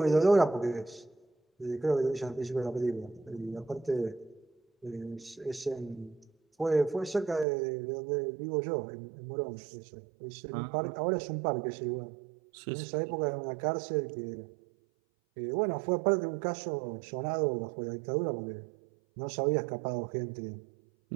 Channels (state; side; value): drops out; left; at 7.5 s